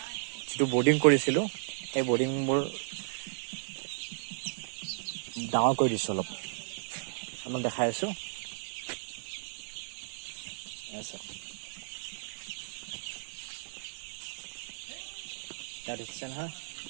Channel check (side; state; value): left; silent; 55 dB below the other